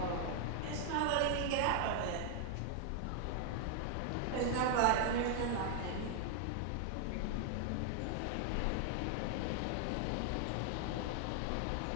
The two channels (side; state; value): both; different; correlation 0.00